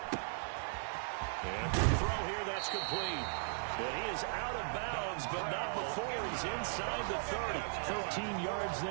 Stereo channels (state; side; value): silent; left; digital silence